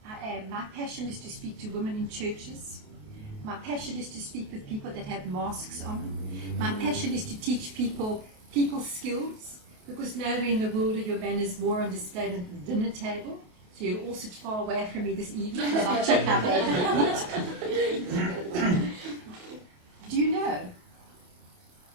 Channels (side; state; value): left; late; 28 ms